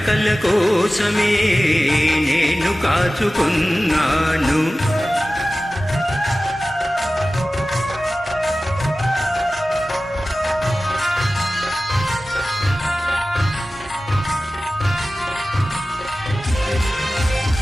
కోసమే నేను కాచుకున్నాను.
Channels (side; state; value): both; normal; correlation 0.96